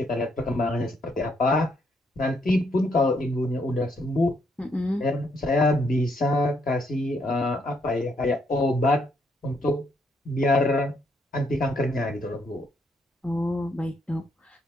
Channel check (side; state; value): both; normal; correlation 0.73